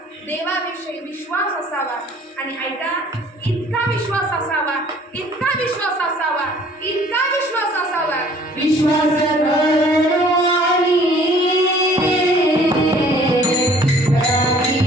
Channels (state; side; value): normal; both; correlation 0.54